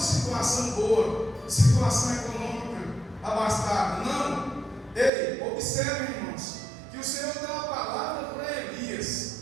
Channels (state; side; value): drops out; left; at 5.1 s